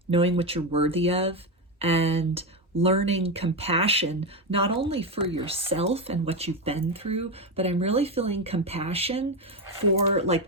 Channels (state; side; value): normal; both; correlation 0.12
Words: knowing what you're worthy of, and learning compassion, not only for yourself and what you've been through, but I'm really feeling compassion for like